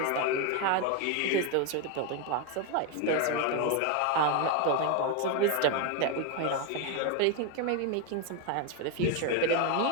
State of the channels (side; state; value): both; different; correlation 0.01